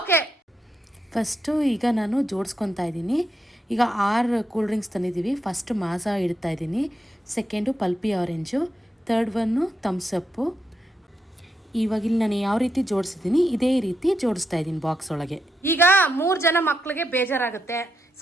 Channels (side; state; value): both; normal; correlation 0.83